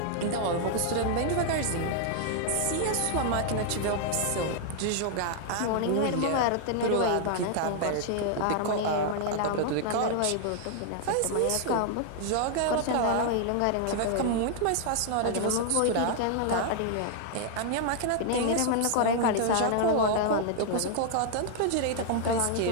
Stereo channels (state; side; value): different; both; correlation 0.00